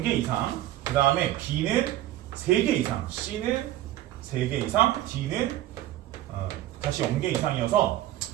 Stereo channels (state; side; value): quieter; left; 14.1 dB